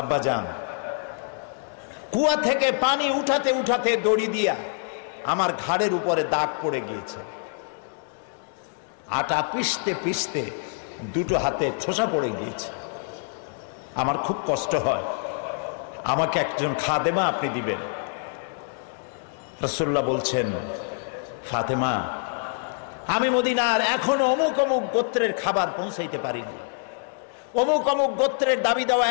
কুয়া থেকে পানি উঠাতে উঠাতে দড়ি দিয়া আমার ঘাড়ের উপরে দাগ পড়ে গিয়েছে, আটা পিষতে পিষতে দুটো হাতে ঠোসা পড়ে গিয়েছে, আমার খুব কষ্ট হয়, আমাকে একজন খাদেমা আপনি দিবেন। রাসূলুল্লাহ বলছেন, ফাতেমা, আমি মদিনার এখনো অমুক অমুক গোত্রের খাবার পৌঁছাইতে পারিনি, অমুক অমুক গোত্রের দাবি দেওয়া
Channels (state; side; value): silent; right; digital silence